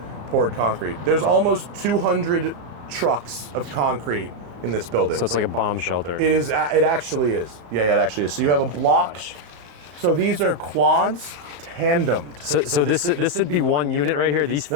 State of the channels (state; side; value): late; left; 34 ms